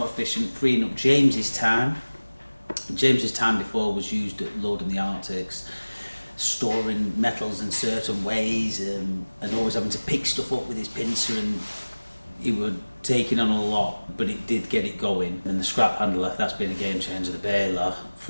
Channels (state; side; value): inverted; both; correlation -1.00